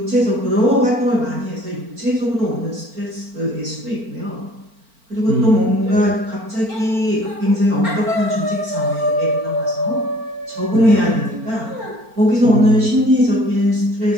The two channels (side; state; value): left; late; 4.4 ms